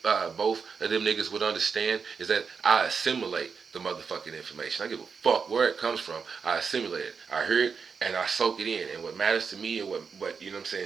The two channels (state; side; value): quieter; left; 5.7 dB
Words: both of them niggas would understand, is that I assimilate the motherfucking information. I give a fuck where it comes from. I assimilate it. I hear it and I soak it in. And what matters to me and what you know what I'm